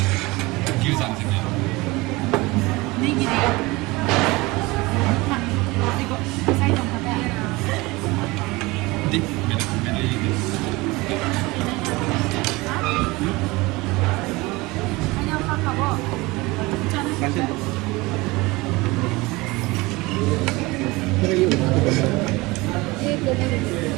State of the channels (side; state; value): left; quieter; 22.5 dB